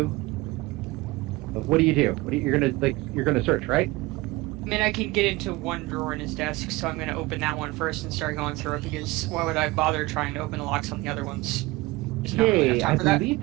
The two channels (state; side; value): quieter; left; 20.8 dB